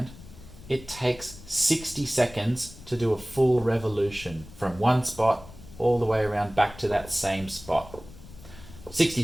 it takes 60 seconds to do a full revolution from one spot all the way around back to that same spot. 60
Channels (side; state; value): left; noise; rumble, 18 dB below the sound